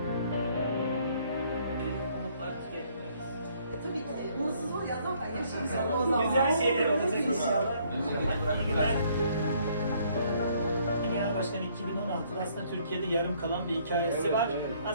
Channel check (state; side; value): inverted; both; correlation -0.65